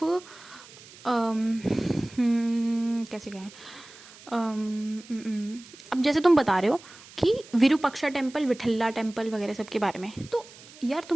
कैसे कहें, अब जैसे तुम बता रहे हो कि विरूपाक्षा टेम्पल, विठल्ला टेम्पल वगैरह सब के बारे में, तो यार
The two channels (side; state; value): right; noise; hiss, 20 dB below the sound